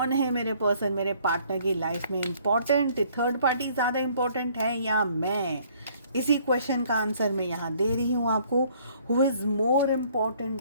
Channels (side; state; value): both; inverted; correlation -0.61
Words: है मेरे पर्सन, मेरे पार्टनर की लाइफ में इम्पॉर्टेंट, थर्ड पार्टी ज़्यादा इम्पॉर्टेंट है या मैं। इसी क्वेश्चन का आंसर मैं यहाँ दे रही हूँ आपको। Who is more